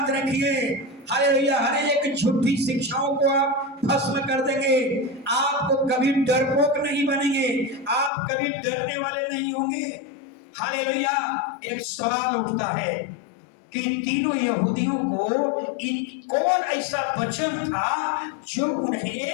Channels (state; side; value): drops out; right; at 8.1 s